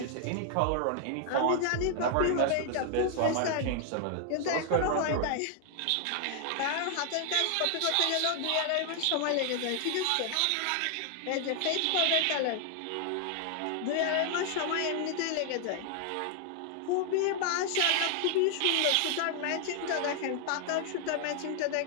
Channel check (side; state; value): both; different; correlation 0.00